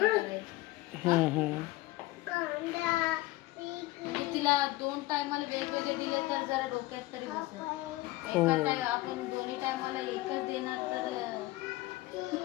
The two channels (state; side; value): quieter; right; 18.7 dB